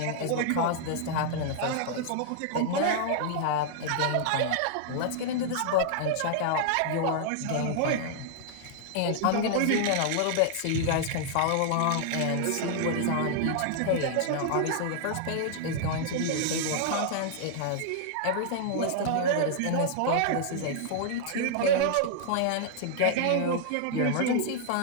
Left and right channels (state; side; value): different; both; correlation -0.01